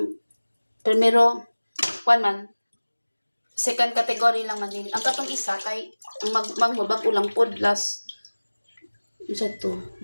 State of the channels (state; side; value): inverted; both; correlation -1.00